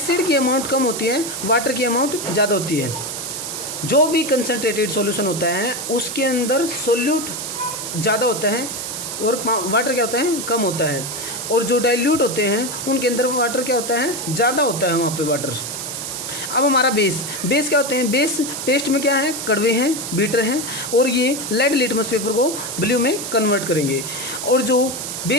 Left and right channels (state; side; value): noise; right; hiss, 6 dB below the sound